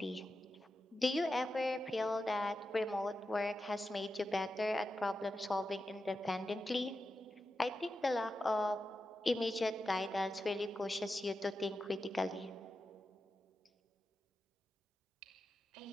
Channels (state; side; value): normal; both; correlation 0.90